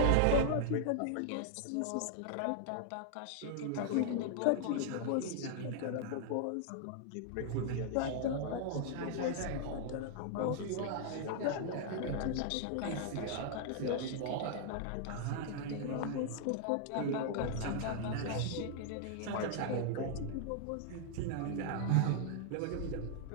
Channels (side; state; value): both; different; correlation -0.01